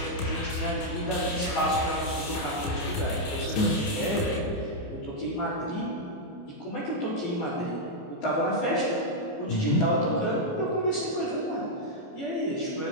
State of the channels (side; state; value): right; late; 28 ms